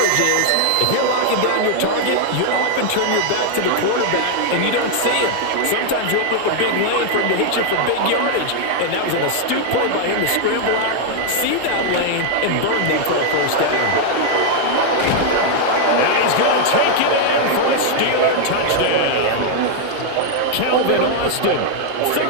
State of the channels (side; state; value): both; different; correlation 0.00